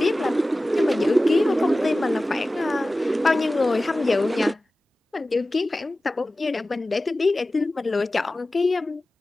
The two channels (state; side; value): normal; both; correlation 0.96